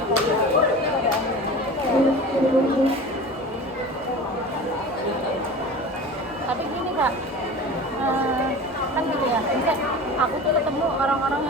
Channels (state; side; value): normal; both; correlation 0.36